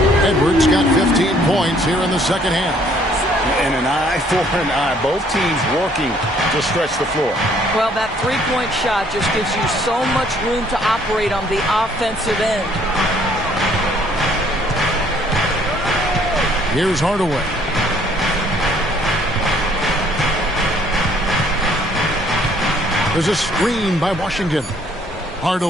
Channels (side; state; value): both; normal; correlation 0.62